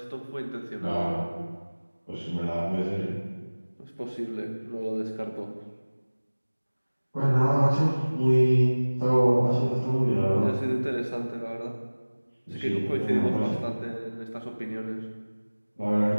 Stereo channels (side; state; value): both; inverted; correlation -1.00